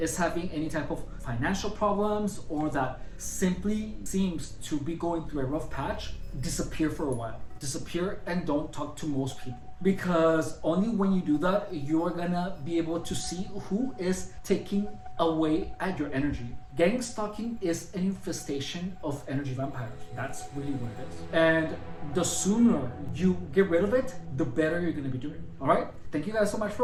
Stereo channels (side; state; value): both; identical; correlation 1.00